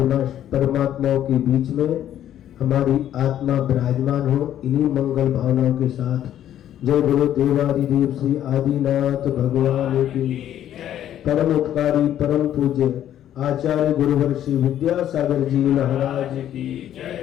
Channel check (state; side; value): quieter; right; 11.2 dB